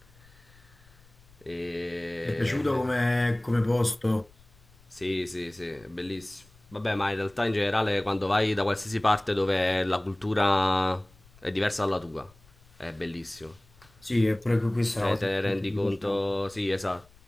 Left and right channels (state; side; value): noise; left; rumble, 27 dB below the sound